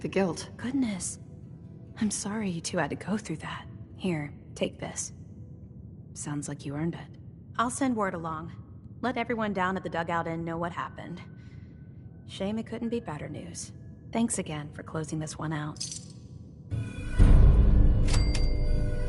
the guilt. Goodness. I'm sorry you two had to go through that. Here, take this. Sounds like you earned it. I'll send word along. Let everyone down at the Dugout Inn know what happened. Shame it couldn't be better news. Thanks again for closing this one out.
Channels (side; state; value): both; identical; correlation 1.00